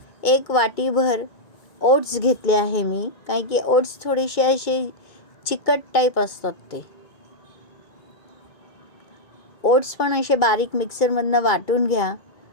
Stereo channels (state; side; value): late; right; 2.3 ms